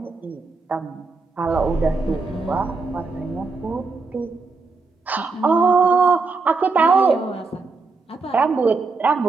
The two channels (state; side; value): quieter; left; 4.1 dB